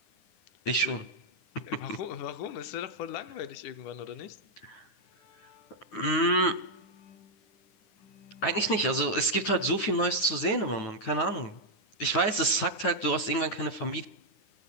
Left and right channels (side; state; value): right; late; 9.8 ms